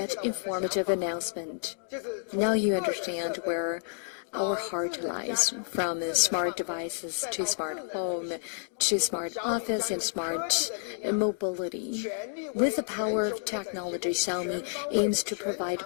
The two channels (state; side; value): silent; right; digital silence